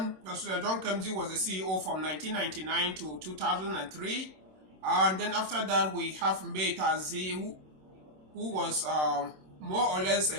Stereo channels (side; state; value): left; late; 26 ms